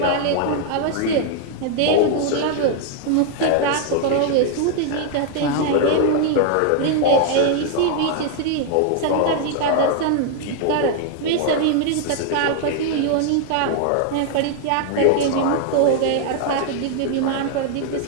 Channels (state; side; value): different; both; correlation 0.00